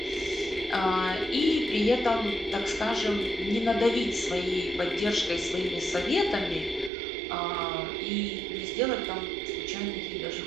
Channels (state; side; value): drops out; left; at 6.9 s